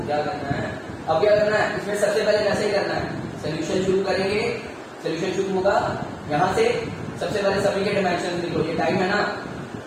क्या करना है। अब क्या करना है, इसमें सबसे पहले कैसे करना है, सोल्यूशन शुरू करेंगे। सोल्यूशन शुरू होगा यहां से, सबसे पहले सभी के डायमेंशन लिखो, ये टाइम है ना,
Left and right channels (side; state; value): both; identical; correlation 1.00